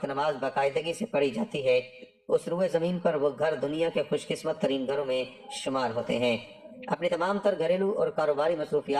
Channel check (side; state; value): both; identical; correlation 1.00